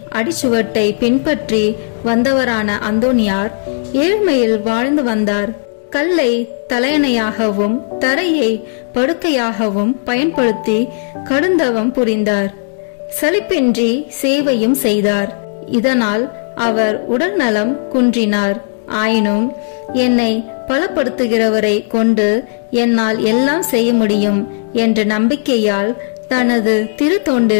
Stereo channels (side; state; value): right; silent; digital silence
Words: அடிச்சுவட்டை பின்பற்றி வந்தவரான அந்தோனியார் ஏழ்மையில் வாழ்ந்து வந்தார். கல்லை தலையணையாகவும் தரையை படுக்கையாகவும் பயன்படுத்தி கடுந்தவம் புரிந்தார். சலிப்பின்றி சேவையும் செய்தார். இதனால் அவர் உடல் நலம் குன்றினார். ஆயினும் என்னை பலப்படுத்துகிறவரை கொண்டு என்னால் எல்லாம் செய்ய முடியும் என்ற நம்பிக்கையால் தனது